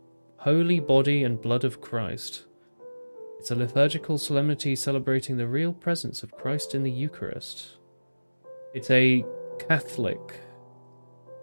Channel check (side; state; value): both; inverted; correlation -1.00